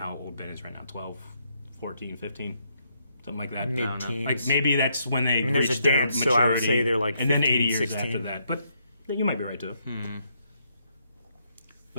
old Ben is right now, 12, 14, 15, something like that. Mid-teens. Like maybe that's when they there's reach a their dance, maturity, so I would say they're like and then 15, 80 years 16. after that. But you might be right too.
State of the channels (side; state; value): both; inverted; correlation -0.75